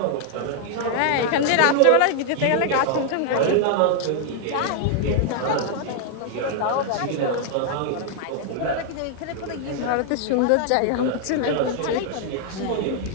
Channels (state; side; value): different; both; correlation 0.00